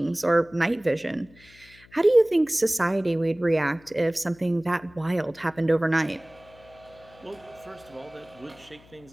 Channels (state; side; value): noise; left; hum, 26 dB below the sound